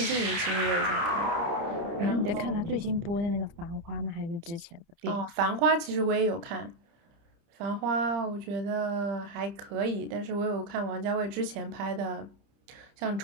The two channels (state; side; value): late; left; 30 ms